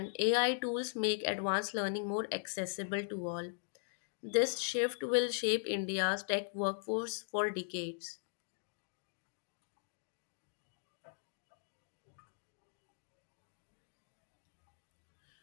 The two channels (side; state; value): right; silent; digital silence